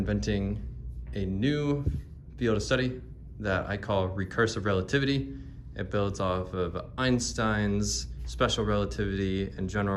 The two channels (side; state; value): both; identical; correlation 1.00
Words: a new field of study that I call recursive relativity. It builds off of Einstein's special relativity and